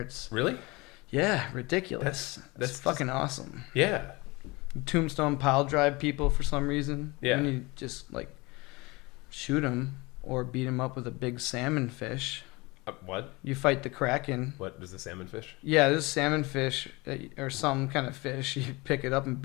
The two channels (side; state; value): right; quieter; 24.3 dB